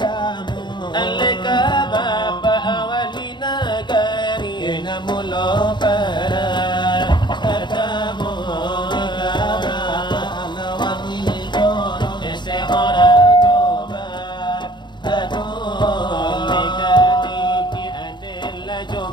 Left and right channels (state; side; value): late; right; 0.22 ms